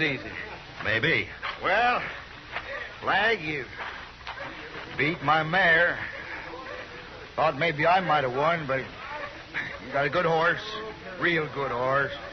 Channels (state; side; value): identical; both; correlation 1.00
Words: Maybe. Well, Flag, you beat my mare. Thought maybe I might have won, but you got a good horse. Real good horse.